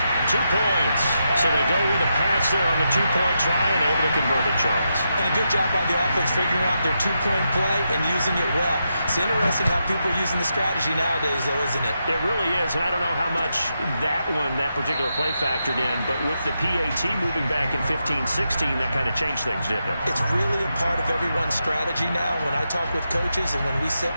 2 points. So they go with a pass there on the 2-point try and able to convert it, Charles. And a good job by the offense figuring out their 2-point play and using it well. It's interesting how people are using the strategy nowadays, though, isn't it? It really is, and I don't know how much that particular play factored in, but with the PAT moving back in 15-16, that kind of changed things, didn't it? It's really a part of everyone's strategy now. When I talk with coaches and when we sit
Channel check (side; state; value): both; inverted; correlation -0.85